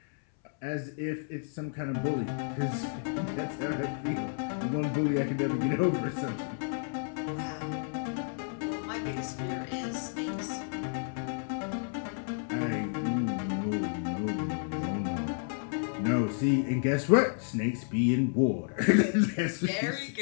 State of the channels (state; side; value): silent; right; 57 dB below the other